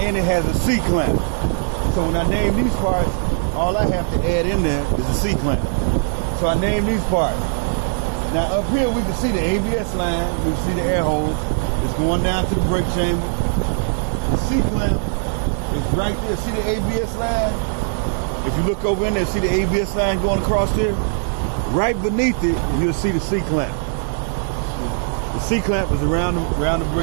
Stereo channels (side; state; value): left; silent; digital silence